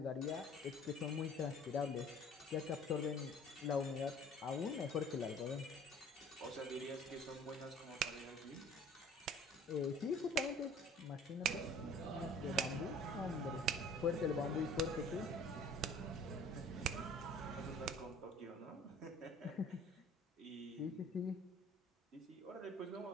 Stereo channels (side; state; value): both; normal; correlation 0.50